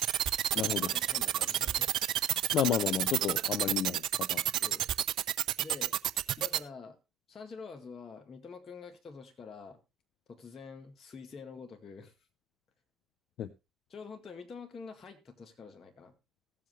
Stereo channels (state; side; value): quieter; left; 3.9 dB